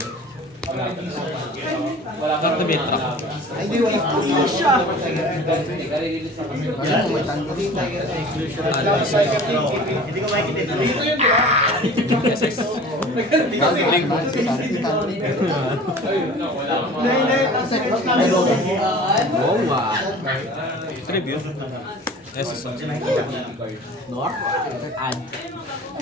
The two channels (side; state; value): both; normal; correlation 0.43